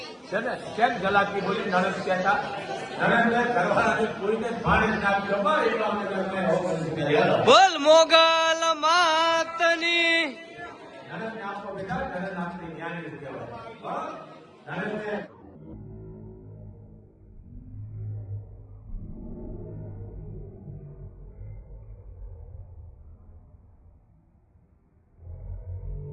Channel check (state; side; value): identical; both; correlation 1.00